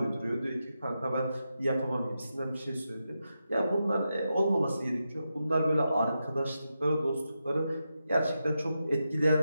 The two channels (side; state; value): both; inverted; correlation -0.88